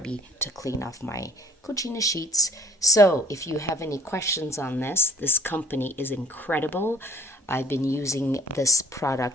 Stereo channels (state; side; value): normal; both; correlation 0.53